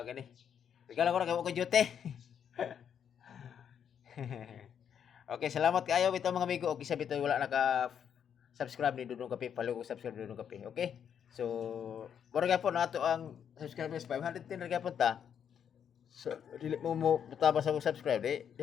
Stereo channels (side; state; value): right; quieter; 8.3 dB